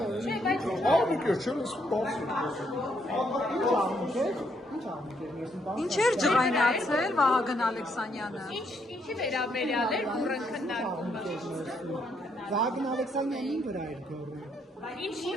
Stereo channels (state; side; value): normal; both; correlation 0.73